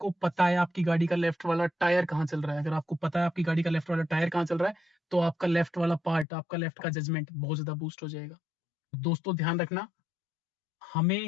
पता है आपकी गाड़ी का लेफ्ट वाला टायर कहाँ चल रहा है। अगर आपको पता है आपकी गाड़ी का लेफ्ट वाला टायर कहाँ चल रहा है, तो आपका लेफ्ट वाला पार्ट, आपका लेफ्ट का जजमेंट बहुत ज्यादा बूस्ट हो जाएगा। दोस्तों ध्यान रखना,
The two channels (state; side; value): drops out; right; at 6.2 s